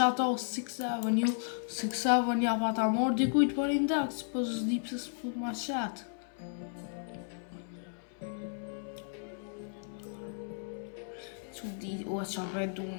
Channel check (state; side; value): silent; right; 55 dB below the other